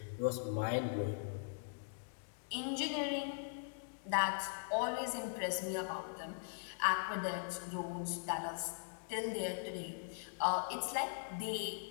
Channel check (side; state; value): right; silent; digital silence